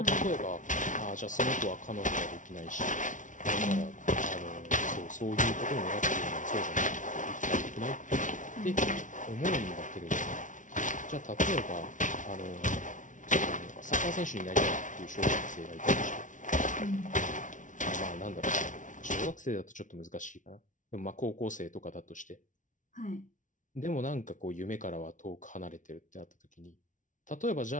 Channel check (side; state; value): right; late; 0.37 ms